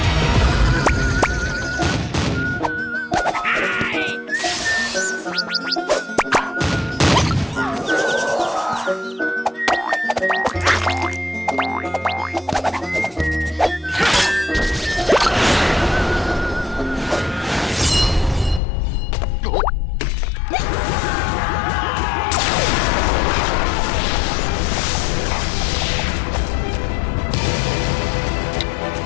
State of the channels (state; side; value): drops out; right; at 18.6 s